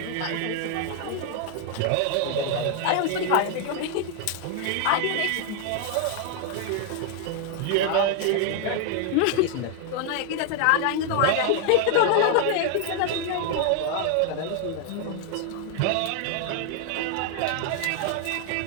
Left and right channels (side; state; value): both; different; correlation 0.00